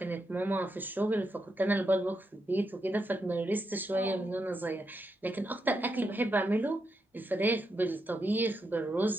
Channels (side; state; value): both; normal; correlation 0.83